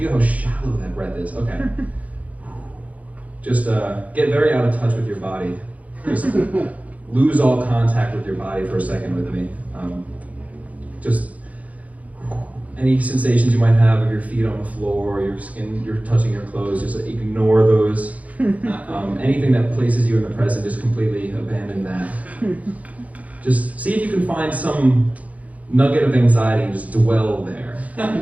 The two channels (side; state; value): left; late; 0.070 ms